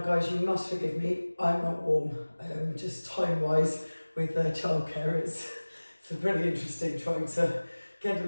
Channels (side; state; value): both; inverted; correlation -1.00